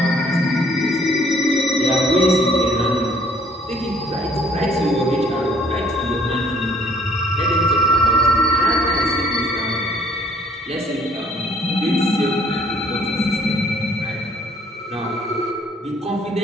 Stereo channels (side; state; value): both; normal; correlation 0.60